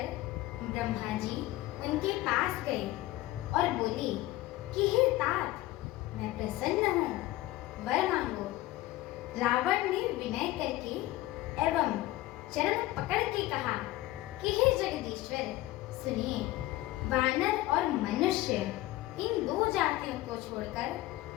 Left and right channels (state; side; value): quieter; right; 16.9 dB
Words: ब्रह्मा जी उनके पास गए और बोले कि हे तात, मैं प्रसन्न हूँ, वर मांगो। रावण ने विनय करके एवं चरण पकड़ के कहा कि हे जगदीश्वर, सुनिए, वानर और मनुष्य इन दो जातियों को छोड़कर